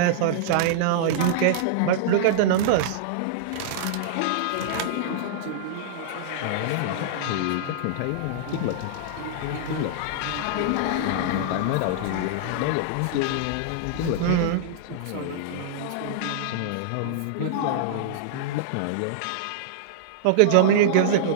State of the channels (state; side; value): different; both; correlation -0.02